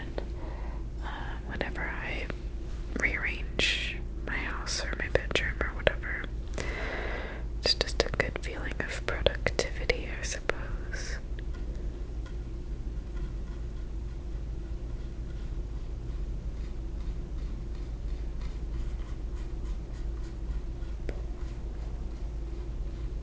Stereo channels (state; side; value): identical; both; correlation 1.00